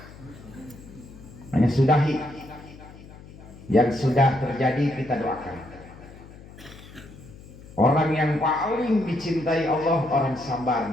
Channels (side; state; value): left; noise; hum, 19 dB below the sound